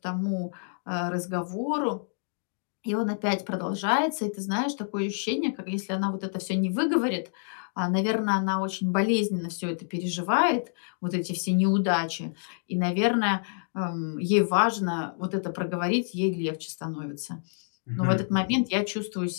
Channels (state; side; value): silent; right; digital silence